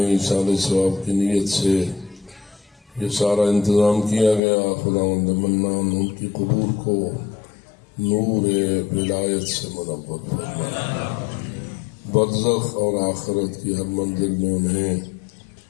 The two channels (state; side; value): drops out; right; at 4.4 s